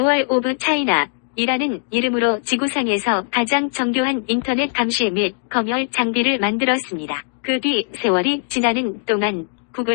오브 차이나 이라는 이름으로 지구상에서 가장 정교한 인터넷 감시 및 검열 장비를 만들었습니다. 그 뒤 세월이 지나는 동안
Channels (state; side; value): silent; right; digital silence